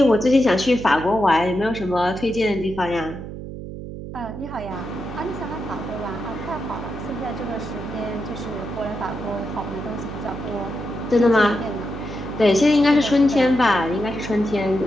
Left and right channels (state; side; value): noise; right; hum, 10 dB below the sound